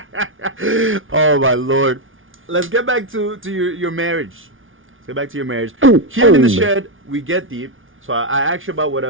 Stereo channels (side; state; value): left; late; 0.58 ms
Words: Oh my Lord. Let's get back to your marriage. Let's get back to your marriage. Here in the shed, we get deep. So I ask you about